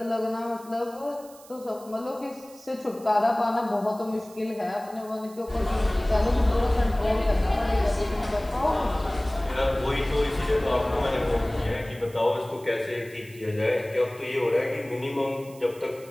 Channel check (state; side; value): noise; right; hiss, 22 dB below the sound